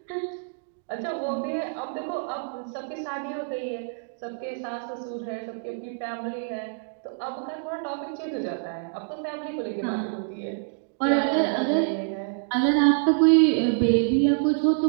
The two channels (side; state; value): left; silent; digital silence